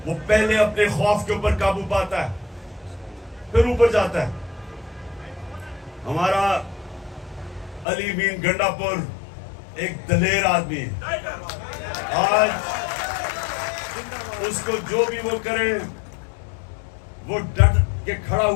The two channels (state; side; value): drops out; right; at 7.9 s